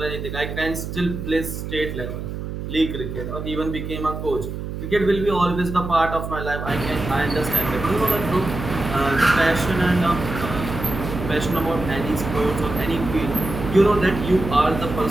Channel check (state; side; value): noise; right; hum, 6 dB below the sound